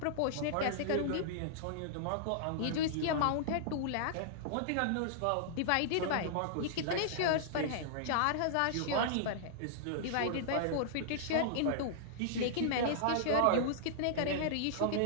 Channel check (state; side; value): different; both; correlation -0.01